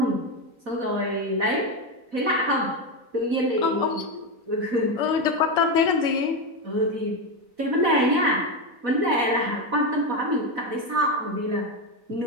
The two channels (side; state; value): left; late; 4.1 ms